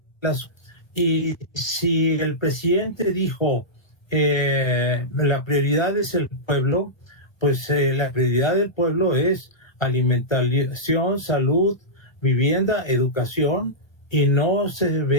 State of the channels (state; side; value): late; right; 1.2 ms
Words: y si el presidente dijo la prioridad es el pueblo, pues la prioridad del pueblo es alimentación, salud, vivienda, educación, y no se